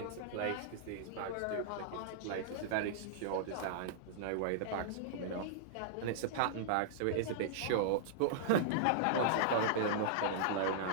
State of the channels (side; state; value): both; different; correlation -0.02